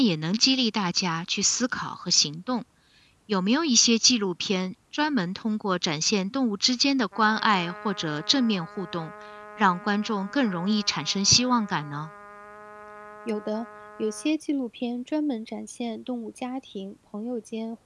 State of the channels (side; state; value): both; identical; correlation 1.00